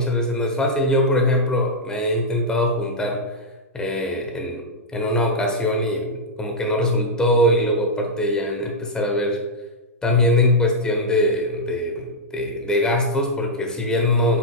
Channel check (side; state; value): both; normal; correlation -0.06